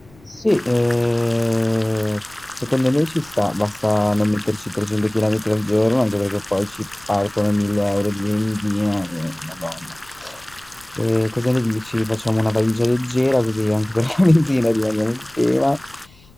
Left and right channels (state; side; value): noise; left; rumble, 27 dB below the sound